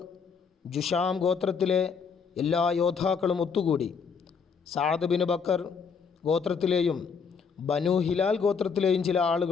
ജുഷാം ഗോത്രത്തിലെ എല്ലാ യോദ്ധാക്കളും ഒത്തുകൂടി. സഅദ് ബിൻ ബക്കർ ഗോത്രത്തിലെയും ബനു ഹിലാൽ ഗോത്രത്തിലെയും ചില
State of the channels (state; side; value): quieter; right; 5.9 dB